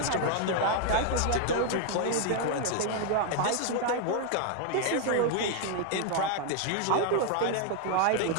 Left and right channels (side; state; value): both; different; correlation 0.00